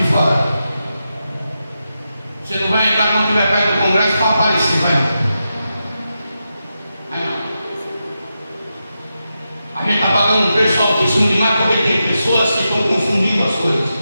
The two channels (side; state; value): both; inverted; correlation -0.88